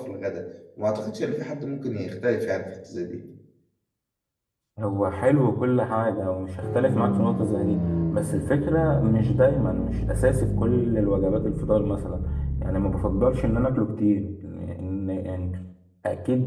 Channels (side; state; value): both; identical; correlation 1.00